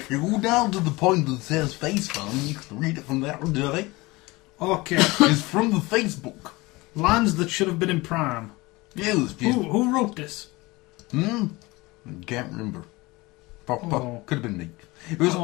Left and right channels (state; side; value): quieter; right; 22.3 dB